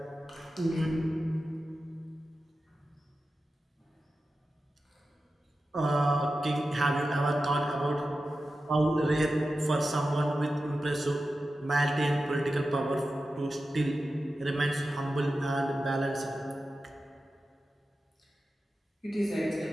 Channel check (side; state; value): both; normal; correlation 0.93